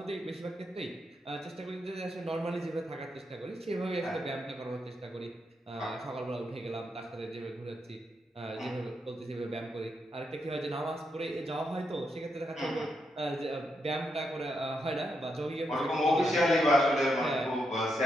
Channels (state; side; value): normal; both; correlation 0.82